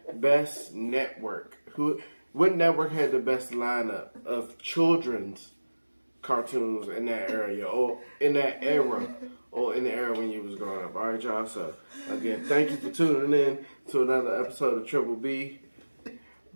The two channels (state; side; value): inverted; both; correlation -1.00